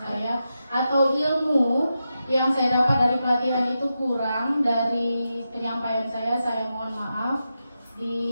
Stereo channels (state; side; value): inverted; both; correlation -0.89